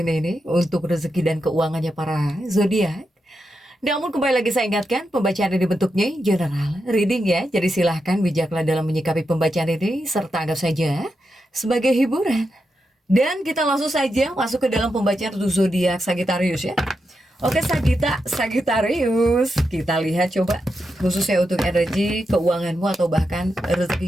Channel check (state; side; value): normal; both; correlation 0.86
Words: ini untuk rezeki dan keuangannya para zodiak. Namun kembali lagi saya ingatkan, pembacaan ini bentuknya general reading ya. Jadi silahkan bijaklah dalam menyikapi pembacaan ini, serta anggap saja sebagai hiburan. Dan kita langsung saja masuk ke dalam pembacaan untuk zodiak Sagittarius ya. Oke Sagittarius, kita lihat coba khususnya untuk energi keuanganmu atau bahkan